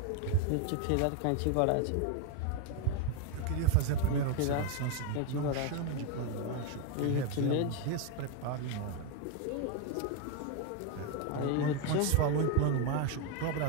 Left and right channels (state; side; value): different; both; correlation 0.02